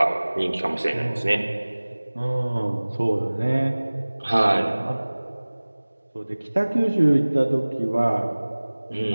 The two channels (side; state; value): both; inverted; correlation -1.00